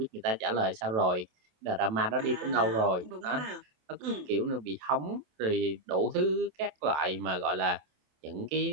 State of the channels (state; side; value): late; left; 27 ms